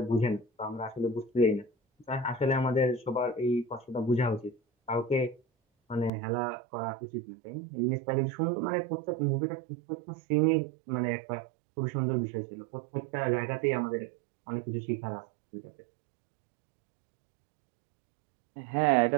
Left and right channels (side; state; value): left; drops out; at 6.1 s